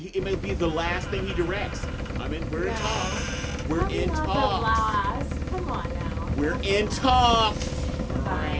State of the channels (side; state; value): both; identical; correlation 1.00